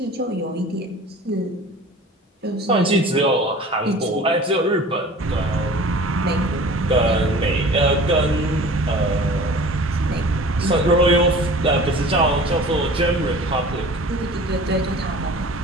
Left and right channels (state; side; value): normal; both; correlation 0.43